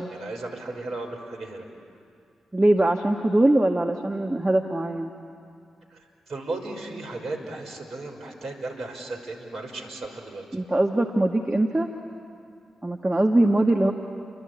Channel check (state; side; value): normal; both; correlation 0.97